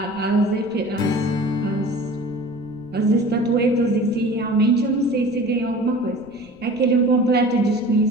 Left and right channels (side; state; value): right; noise; rumble, 26 dB below the sound